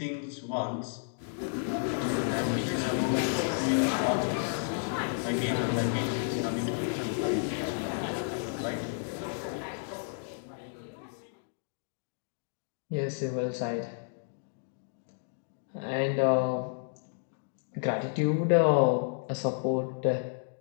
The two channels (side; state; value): right; silent; digital silence